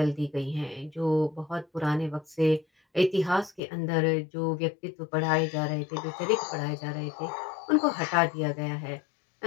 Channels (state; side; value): drops out; right; at 3.6 s